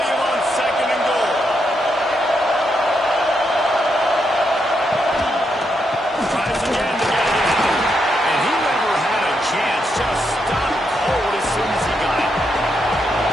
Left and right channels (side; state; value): both; normal; correlation 0.81